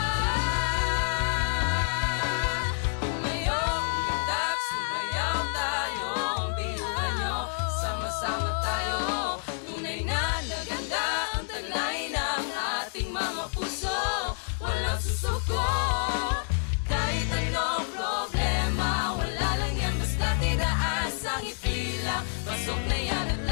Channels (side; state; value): right; silent; digital silence